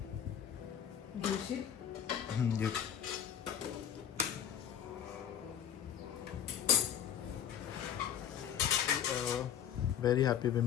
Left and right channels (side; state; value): right; quieter; 9.2 dB